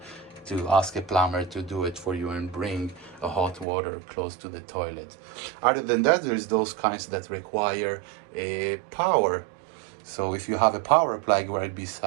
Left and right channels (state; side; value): drops out; left; at 3.7 s